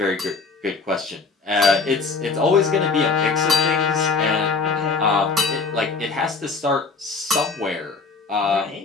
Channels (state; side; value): quieter; right; 4.4 dB